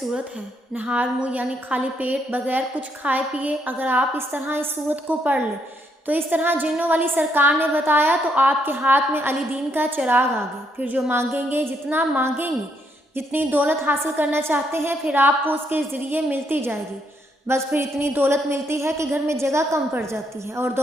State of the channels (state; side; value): normal; both; correlation 0.74